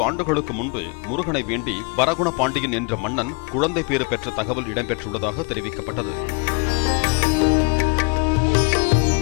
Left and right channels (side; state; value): right; quieter; 32.0 dB